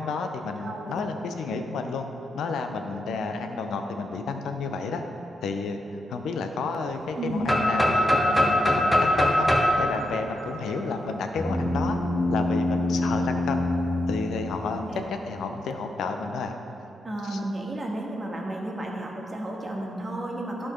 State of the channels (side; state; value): both; normal; correlation 0.83